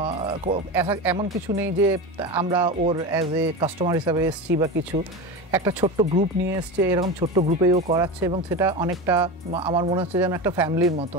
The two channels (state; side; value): normal; both; correlation 0.23